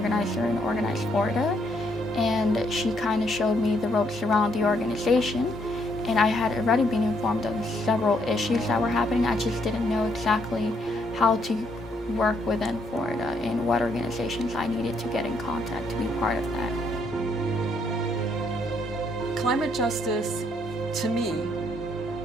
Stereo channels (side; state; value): both; normal; correlation 0.72